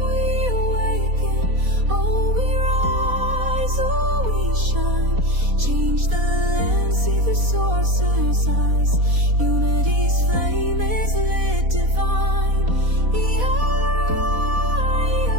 we awaken. Oh, we rise, oh, we shine. Change the land, see the source's eyes. Unity's flame is lit divine.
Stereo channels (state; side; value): late; left; 4.1 ms